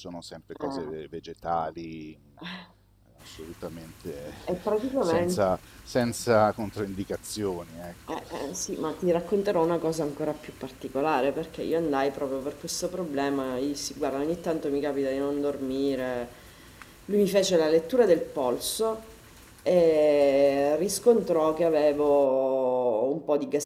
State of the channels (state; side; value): identical; both; correlation 1.00